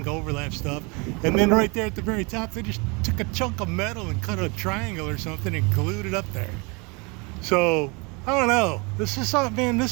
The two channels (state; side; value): quieter; left; 29.3 dB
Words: overlap stuff, and then right there at the very top, they just took a chunk of metal and cut a triangle or something and glued it up there. So I don't know. This is something, man.